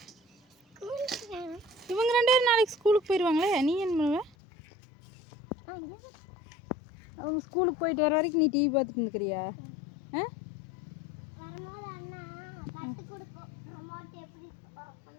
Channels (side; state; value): right; drops out; at 4.4 s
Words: இவங்க 2 பேரும் நாளைக்கு ஸ்கூலுக்கு போயிடுவாங்களே, நீ என்ன பண்ணுவ? அவங்க ஸ்கூலுக்கு போயிட்டு வர வரைக்கும் நீ டிவி பார்த்துட்டு இருந்துக்கிறியா?